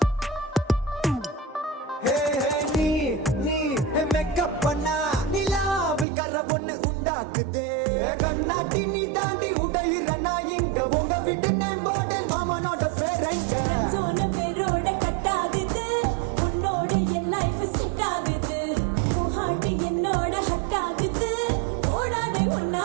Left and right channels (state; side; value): drops out; left; at 6.1 s